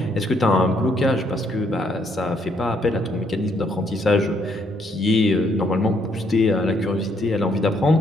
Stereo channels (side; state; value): both; normal; correlation 0.70